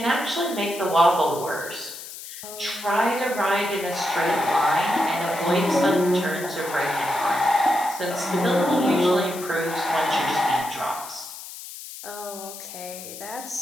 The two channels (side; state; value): left; noise; hiss, 12 dB below the sound